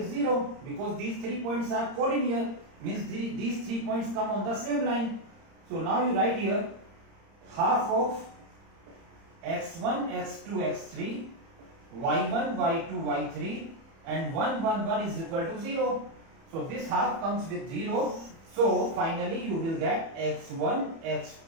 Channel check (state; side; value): late; left; 30 ms